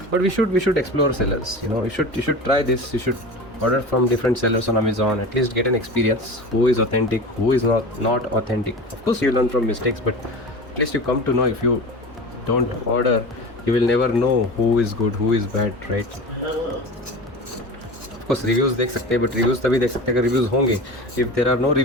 But we should explore sellers. You should try this. You should order from different sellers on Amazon. At least get an experience. Who is authentic? Who is not authentic? Of course, you learn from mistakes, but at least you come to know. If you don't order, you will never know who is good, who is bad, right? Of course, reviews देख सकते हैं, but reviews तभी देख सकते हैं अगर reviews होंगे. If there are no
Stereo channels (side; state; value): both; normal; correlation 0.32